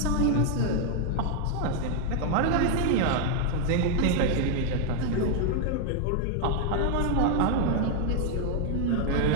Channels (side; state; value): both; different; correlation 0.00